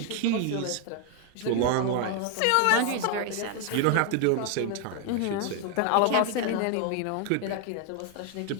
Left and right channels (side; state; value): both; different; correlation 0.01